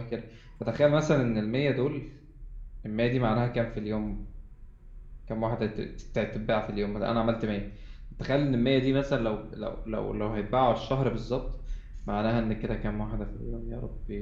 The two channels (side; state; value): both; identical; correlation 1.00